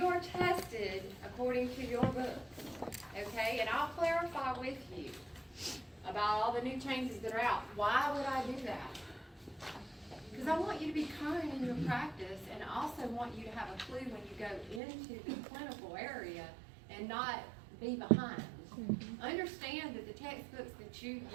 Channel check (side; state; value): left; drops out; at 14.8 s